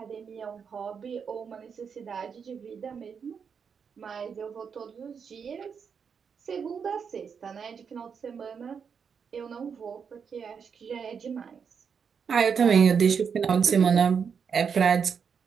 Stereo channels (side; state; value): left; quieter; 6.5 dB